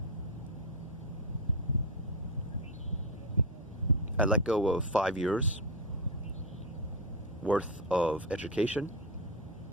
I let go of 5 years worth of education,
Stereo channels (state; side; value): normal; both; correlation 0.09